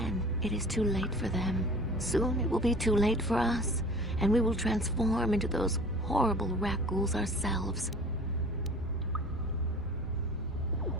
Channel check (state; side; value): normal; both; correlation 0.44